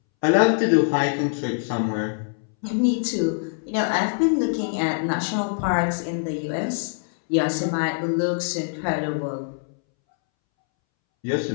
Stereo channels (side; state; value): right; silent; 63 dB below the other